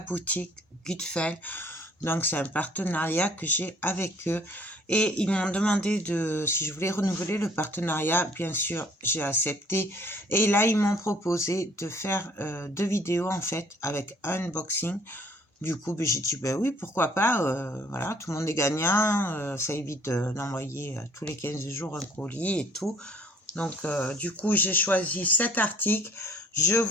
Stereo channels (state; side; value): normal; both; correlation 0.57